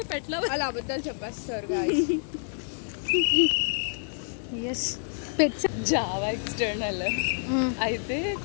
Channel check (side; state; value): right; silent; digital silence